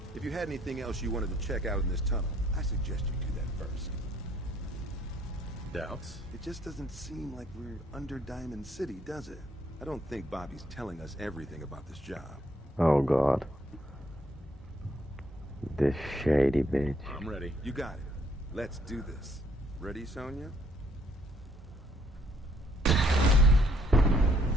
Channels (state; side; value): normal; both; correlation 0.67